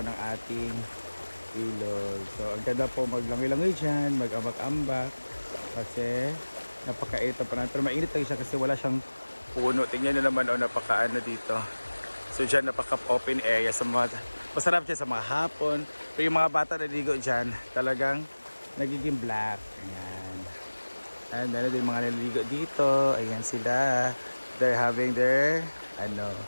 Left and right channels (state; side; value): inverted; both; correlation -1.00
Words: ng ating ilog. So ang ganda po maglangoy-langoy dyan, mag-ambak-ambak kasi napakainit pa na. Pero mainit lang siya kasi wala siyang puno. Tingnan nyo naman napakaano dito. So dyan napaka-open area sa mga, masarap dyan sa mga hapon. Pero yung mga bata naliligo dyan talagang nagiging black. Ayan. And meron din mga naliligo dito. Ayan sila. They're having their